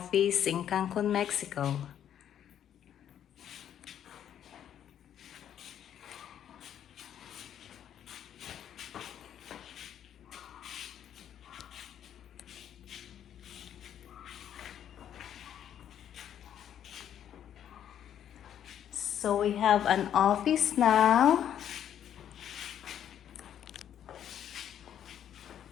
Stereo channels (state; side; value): quieter; right; 9.9 dB